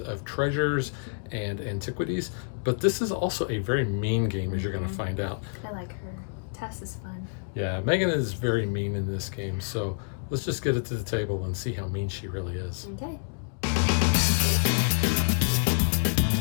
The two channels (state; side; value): silent; right; digital silence